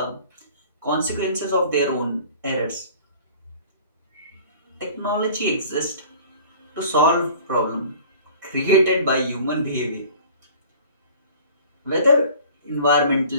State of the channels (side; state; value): both; inverted; correlation -0.47